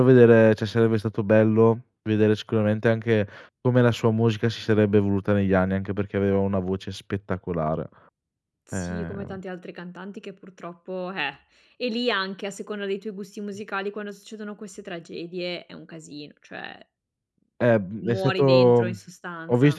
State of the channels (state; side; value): identical; both; correlation 1.00